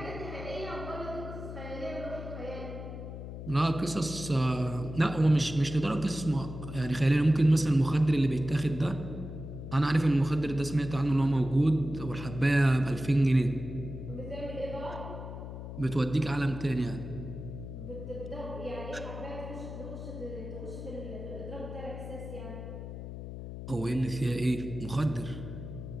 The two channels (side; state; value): left; noise; hum, 9 dB below the sound